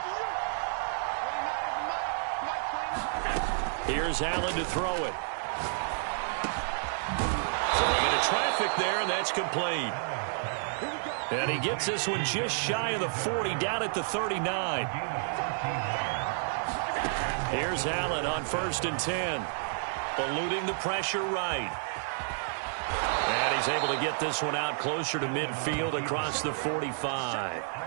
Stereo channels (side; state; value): left; silent; digital silence